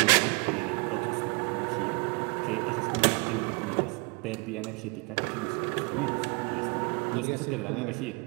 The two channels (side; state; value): left; quieter; 30.1 dB